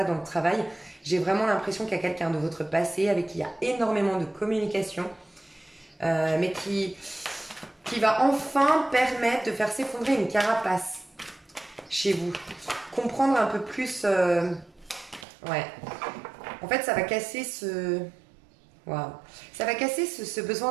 dans le travail, j'ai vraiment l'impression qu'il y a quelqu'un de votre passé avec qui il y a énormément de communication, mais qui va enfin permettre de faire s'effondrer une carapace chez vous. Comprendre un peu plus... ouais. En fait, ça va casser ce... Waouh. Ça va casser ce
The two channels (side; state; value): left; drops out; at 15.2 s